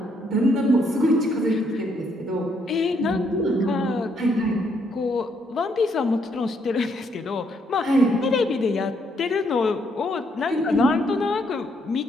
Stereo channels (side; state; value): both; normal; correlation 0.73